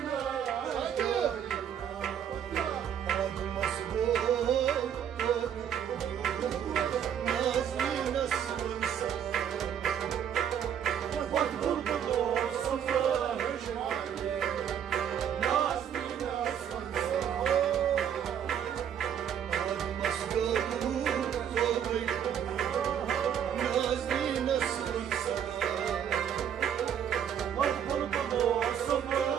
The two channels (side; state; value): left; quieter; 8.9 dB